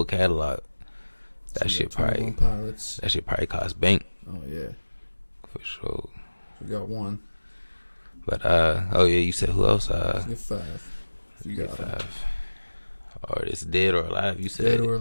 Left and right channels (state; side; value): inverted; both; correlation -1.00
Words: catalog. That shit probably cost bank. Oh yeah, for sure. We got one. But you said who else? Get 5. You got 5. Artists dead or alive? You said dead or